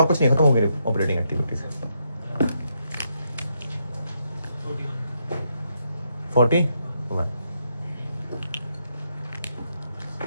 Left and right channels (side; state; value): both; inverted; correlation -0.79